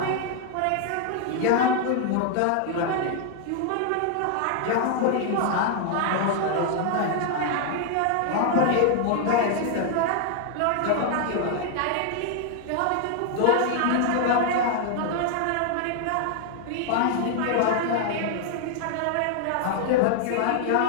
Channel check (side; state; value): both; different; correlation 0.00